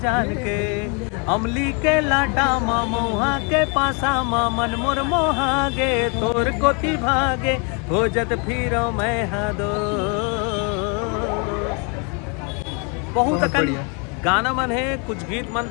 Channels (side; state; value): right; quieter; 34.9 dB